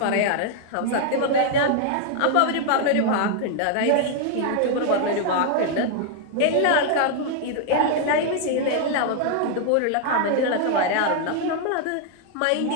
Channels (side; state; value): both; different; correlation 0.00